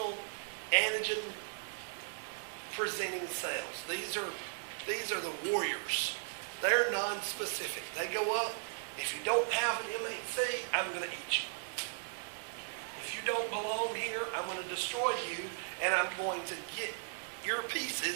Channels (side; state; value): left; silent; 53 dB below the other